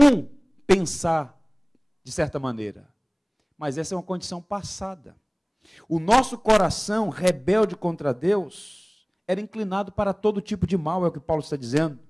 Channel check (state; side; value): identical; both; correlation 1.00